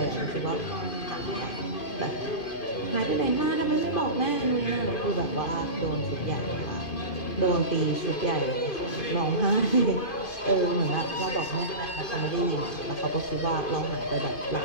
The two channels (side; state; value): right; late; 2.5 ms